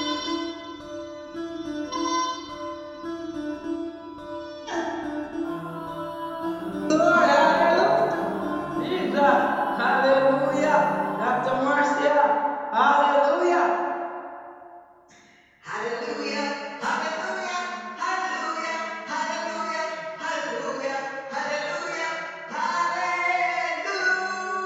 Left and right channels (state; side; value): identical; both; correlation 1.00